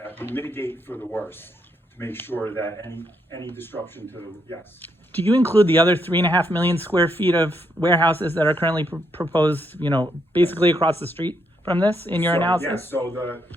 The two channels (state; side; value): normal; both; correlation 0.77